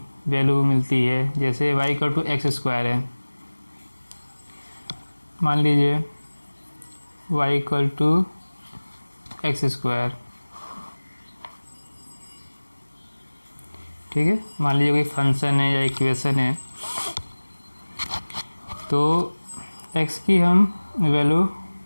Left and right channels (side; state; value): both; inverted; correlation -1.00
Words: वैल्यू मिलती है। जैसे y equal to x square है, मान लीजिए y equal to x square. ठीक है, मान लीजिए कोई फंक्शन है या इक्वेशन है, तो x की हम वैल्यू